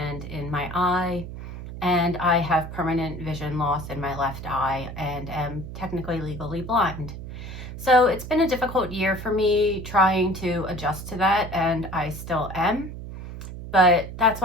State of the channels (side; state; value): right; noise; hum, 10 dB below the sound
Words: in my eye, and I have permanent vision loss in my left eye and am technically legally blind. So it's been a difficult year for me trying to adjust to that, and I still am. But that's